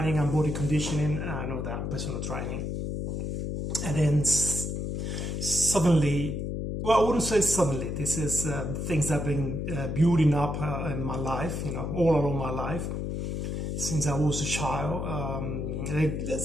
and body conditioning and all that personal training. And then suddenly, well, I wouldn't say suddenly. This is things that have been building up in my life, all along my life since I was a child.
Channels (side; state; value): left; noise; hum, 3 dB below the sound